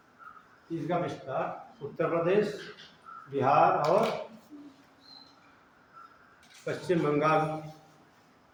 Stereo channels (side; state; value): both; identical; correlation 1.00